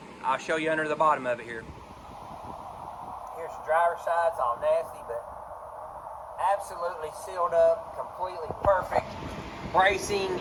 I'll show you under the bottom of it here. Here's the driver's side. It's all nasty, but absolutely sealed up, completely perfect. Bracing,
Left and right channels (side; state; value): both; identical; correlation 1.00